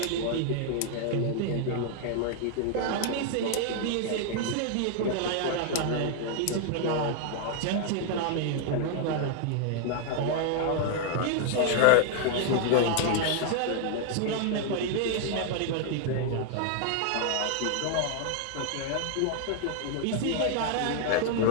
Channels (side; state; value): both; different; correlation 0.00